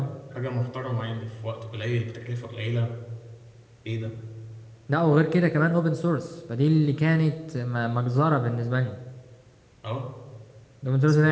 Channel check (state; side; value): identical; both; correlation 1.00